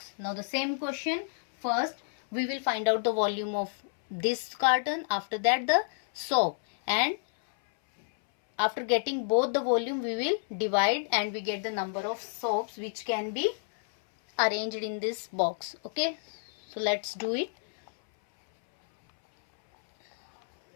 Now the same question. First we will find out the volume of this carton, after that the soap, and after getting both the volume we will divide and we get the number of soaps which can be arranged in this box. Okay, so let's do it.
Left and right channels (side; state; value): right; silent; 58 dB below the other